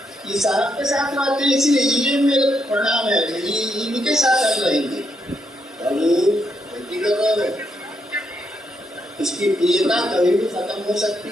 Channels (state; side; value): normal; both; correlation 0.78